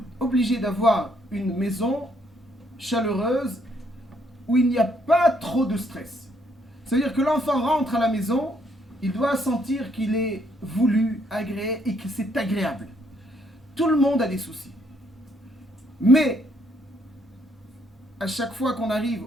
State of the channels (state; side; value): normal; both; correlation 0.70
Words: Obligé d'avoir une maison chaleureuse où il n'y a pas trop de stress. C'est-à-dire que l'enfant rentre à la maison, il doit sentir qu'il est voulu, agréé et que c'est agréable. Tout le monde a des soucis. Mais, à chaque fois qu'on